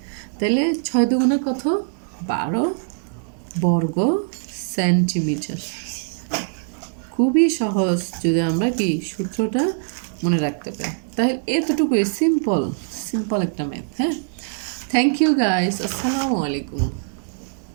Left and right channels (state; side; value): silent; left; digital silence